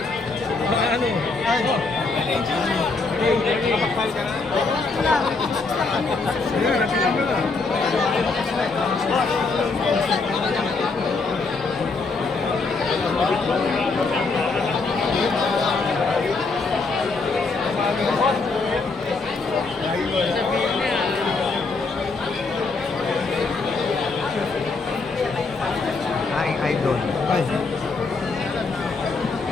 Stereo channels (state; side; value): quieter; right; 4.0 dB